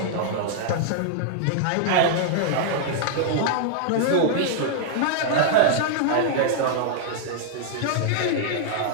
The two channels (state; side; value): different; both; correlation -0.01